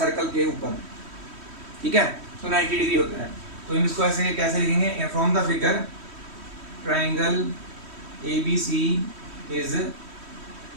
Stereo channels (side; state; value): left; late; 3.1 ms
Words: के ऊपर, ठीक है, तो 90 डिग्री होता है। तो हम इसको ऐसे कैसे लिखेंगे, from the figure triangle A B C is,